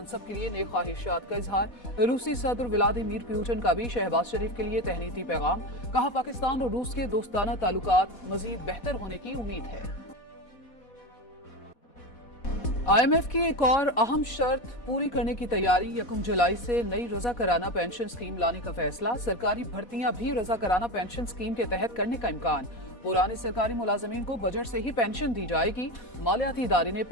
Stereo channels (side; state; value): right; late; 4.1 ms